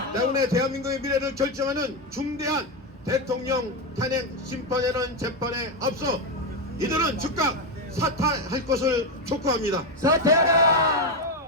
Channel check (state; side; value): normal; both; correlation 0.09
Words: 때문에 대한민국의 미래를 결정하는 중대한 대통령 탄핵 심판이라는 재판에 앞서 이들은 즉각 사퇴할 것을 촉구합니다.